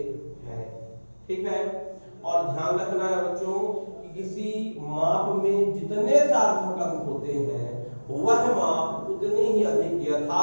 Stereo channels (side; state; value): both; inverted; correlation -1.00